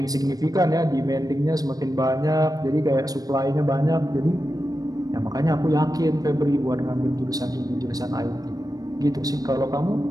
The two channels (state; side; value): late; left; 0.18 ms